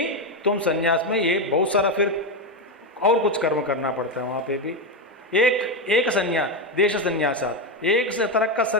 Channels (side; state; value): both; normal; correlation 0.10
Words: तुम संन्यास में ये बहुत सारा फिर और कुछ कर्म करना पड़ता है। वहाँ पे भी एक संन्यास, देश संन्यासात, एक से तरह का